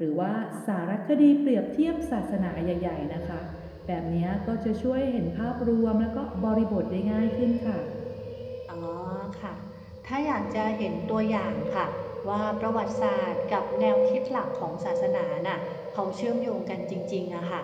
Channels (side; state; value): both; identical; correlation 1.00